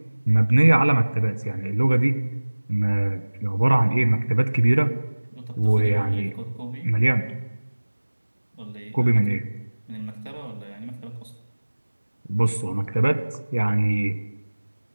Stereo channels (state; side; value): inverted; both; correlation -1.00